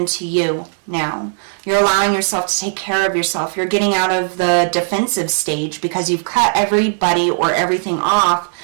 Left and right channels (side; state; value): left; silent; digital silence